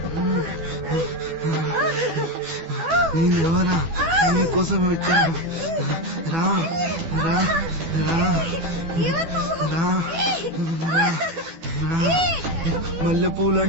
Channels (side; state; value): left; late; 12 ms